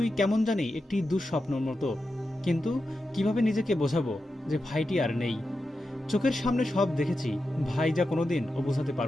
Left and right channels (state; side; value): normal; both; correlation 0.90